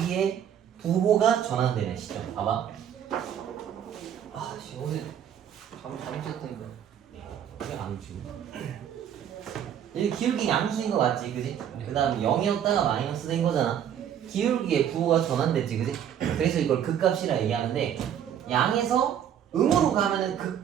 부호가 전환되는 시점. 봐봐. 오늘 잘못 쳤다니까 왜 안 오지? 여기 기울기 양수인 거 맞지, 그지? 그 다음 0이었다가 마이너스 된 거잖아. 기울기의 부호가 전환됐지, 그지? 그래서 이걸 극값이라 얘기하는데, 양에서 음으로 가면은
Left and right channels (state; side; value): quieter; left; 9.4 dB